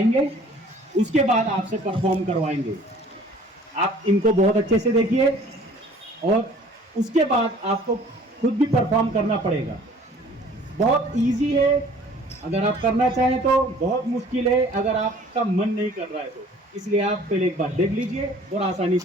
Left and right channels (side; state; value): both; normal; correlation 0.52